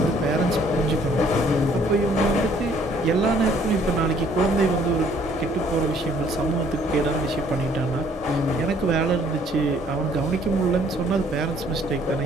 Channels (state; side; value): normal; both; correlation 0.61